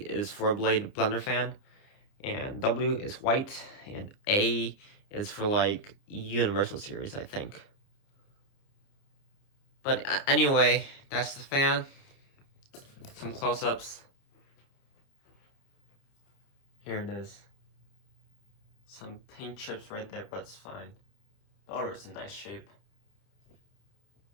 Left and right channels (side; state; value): right; late; 29 ms